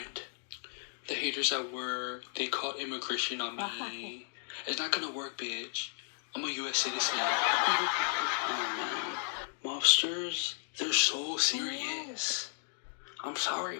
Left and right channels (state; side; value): silent; right; 55 dB below the other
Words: The haters at work, they called immigration on me. It's not gonna work, bitch. I'm a U.S. citizen. Oh man. Mobsters, they're so serious. I'm sorry,